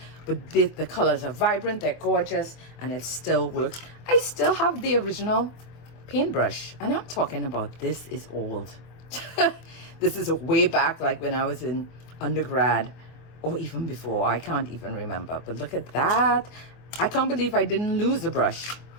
But the colors are vibrant, they're gorgeous, and it still works. I still have the original paintbrush. And I'm talking about this is old. This is way back, like when I was in undergrad. Or even before, I can't even remember. But look at that. I can't believe I didn't lose the brush.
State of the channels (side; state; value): right; late; 24 ms